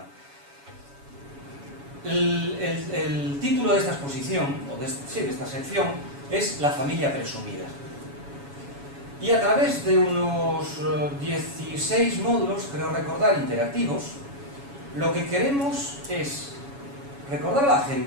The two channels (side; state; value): left; late; 7.1 ms